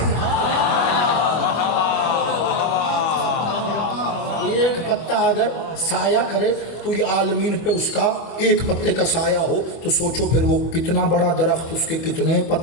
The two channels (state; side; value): late; right; 24 ms